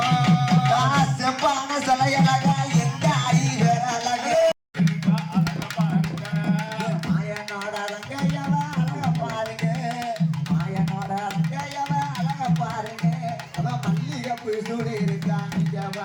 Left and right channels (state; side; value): identical; both; correlation 1.00